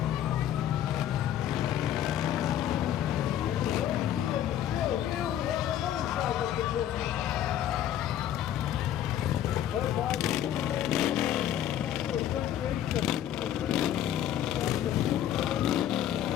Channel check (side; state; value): right; quieter; 11.1 dB